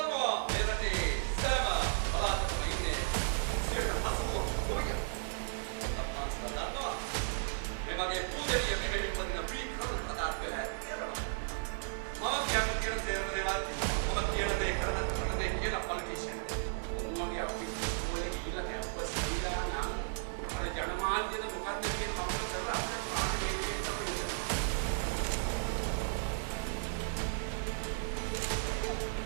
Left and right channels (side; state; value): left; silent; digital silence